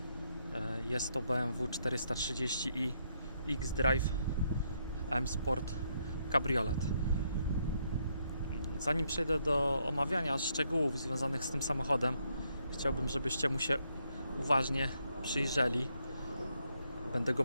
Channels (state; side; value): inverted; both; correlation -0.75